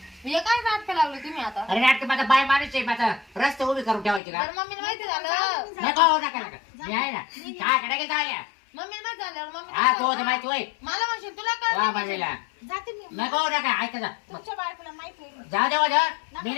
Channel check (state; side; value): drops out; right; at 4.2 s